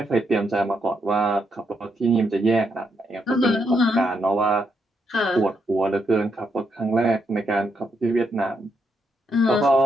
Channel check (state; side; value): normal; both; correlation 0.79